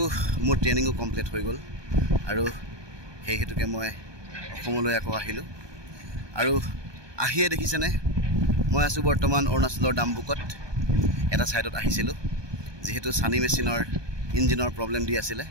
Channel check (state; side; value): late; left; 1.2 ms